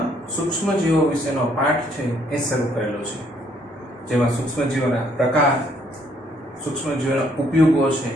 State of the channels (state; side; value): normal; both; correlation 0.67